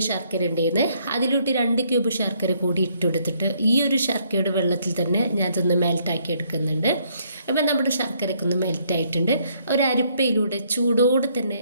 ശർക്കര ഉണ്ടായിരുന്നു, അതിലോട്ട് 2 ക്യൂബ് ശർക്കര കൂടി ഇട്ടെടുത്തിട്ട് ഈ ഒരു ശർക്കരയുടെ വെള്ളത്തിൽ തന്നെ ഞാൻ ഇതൊന്ന് മെൽറ്റാക്കി എടുക്കുന്നുണ്ട്. അപ്പം നമ്മുടെ ശർക്കരയ്ക്ക് ഒന്ന് മെൽറ്റായിട്ടുണ്ട്. ഒരു അരിപ്പയിലൂടെ ചൂടോടെ തന്നെ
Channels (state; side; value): inverted; both; correlation -0.69